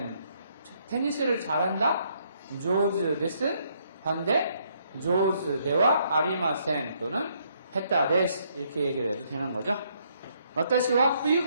테니스를 잘한다? 上手です. 반대? 上手ではありません 또는 下手です 이렇게 얘기를 해도 되는 거죠. 私は冬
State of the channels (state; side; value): inverted; both; correlation -0.70